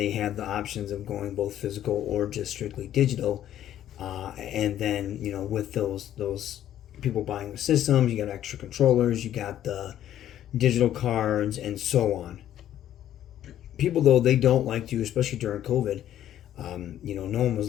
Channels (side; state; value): right; quieter; 11.6 dB